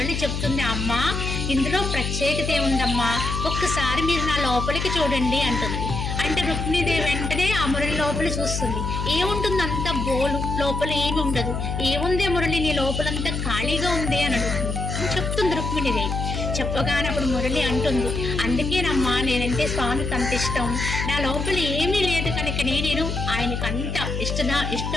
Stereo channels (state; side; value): noise; left; hum, 3 dB below the sound